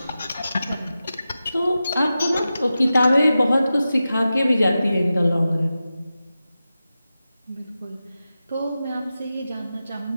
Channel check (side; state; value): both; inverted; correlation -0.93